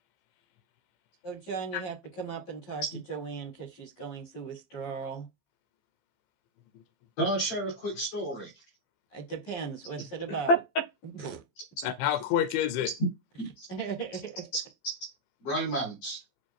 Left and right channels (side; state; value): right; late; 15 ms